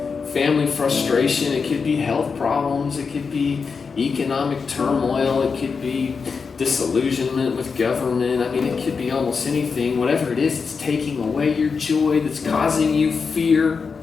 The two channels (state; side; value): quieter; right; 5.3 dB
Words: family frustration, it could be health problems, it could be economic turmoil. It could be disillusionment with government. I mean, it could be almost anything. Whatever it is, it's taking away your joy, that's causing you fear.